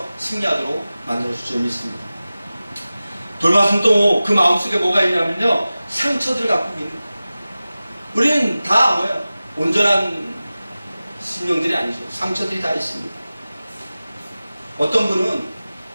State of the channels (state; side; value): inverted; both; correlation -0.96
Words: 승리하도록 만들어주실 줄 믿습니다. 돌밭은 또 그 마음속에 뭐가 있냐면요, 상처들을 갖고 있는 거예요. 우리는 다 뭐예요? 온전한 심령들이 아니죠. 상처들이 다 있습니다. 어떤 분은